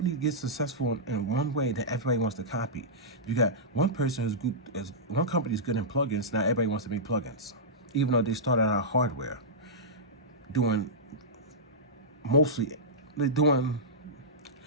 get successful in one way that everybody wants to copy. You got one person who's good, one company's good in plugins, now everybody wants to make plugins. Even though they started out hardware, doing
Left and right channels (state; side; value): normal; both; correlation -0.14